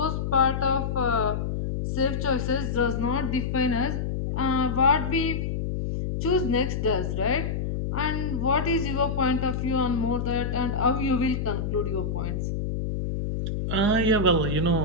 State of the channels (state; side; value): noise; left; hum, 2 dB below the sound